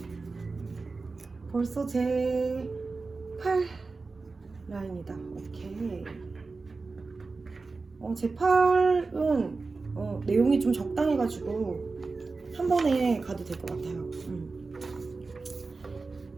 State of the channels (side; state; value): left; quieter; 4.0 dB